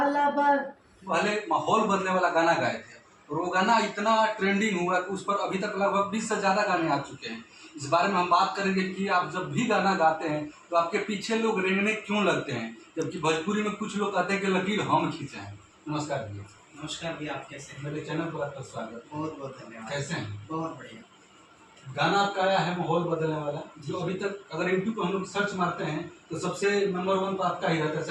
बा। पहले माहौल बदलने वाला गाना गाए थे और वो गाना इतना ट्रेंडिंग हुआ कि उस पर अभी तक लगभग 20 से ज़्यादा गाने आ चुके हैं। इस बारे में हम बात करेंगे कि आप जब भी गाना गाते हैं तो आपके पीछे लोग रेंगने क्यों लगते हैं, जबकि भोजपुरी में कुछ लोग कहते हैं कि लकीर हम खींचे हैं। नमस्कार भैया। नमस्कार भैया, आप कैसे हैं? मेरे चैनल पर आपका स्वागत। बहुत बहुत धन्यवाद। कैसे हैं? बहुत बढ़िया। गाना आपका आया है माहौल बदलने वाला, जो अभी तक अगर यूट्यूब पर हम लोग सर्च मारते हैं तो सबसे नंबर 1 पर आपका ही रहता है।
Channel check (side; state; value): both; identical; correlation 1.00